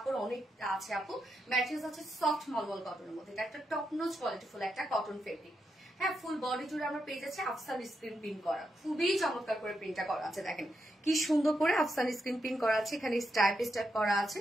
অনেক আছে আপু। ম্যাটেরিয়ালস আছে সফট মলমল কটনের মধ্যে। এটা একটা টপ নোচ কোয়ালিটিফুল একটা কটন ফেব্রিক। হ্যাঁ, ফুল বডি জুড়ে আমরা পেয়ে যাচ্ছি আফসান স্ক্রিন প্রিন্ট করা, খুবই চমৎকার করে প্রিন্টটা করা আছে। দেখেন কি সুন্দর করে আফসান স্ক্রিন প্রিন্ট করা আছে, এখানে স্ট্রাইপ স্ট্রাইপ করা আছে।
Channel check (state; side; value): normal; both; correlation 0.84